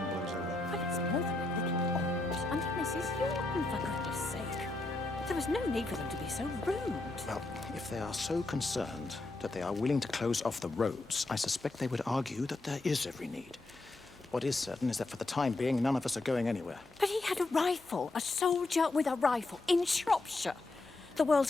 blows over. But it's more than a little odd. I mean, Mrs. Yorton, for goodness sake. There was no need for them to be so rude. Well, if they are so concerned that they are willing to close off the roads, I suspect they would argue that there is every need. What is certain is that for the time being, none of us are going anywhere. But he had a rifle, a soldier with a rifle, in Shropshire. The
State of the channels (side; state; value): right; quieter; 3.1 dB